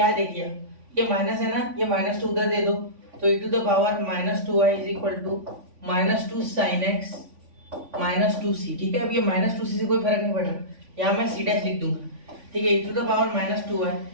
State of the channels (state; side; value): late; left; 3.5 ms